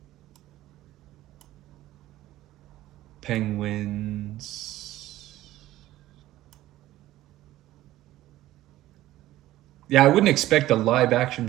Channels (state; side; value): quieter; left; 15.3 dB